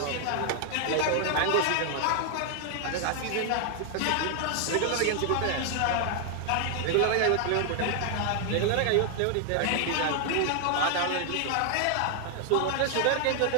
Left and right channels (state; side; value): different; both; correlation 0.00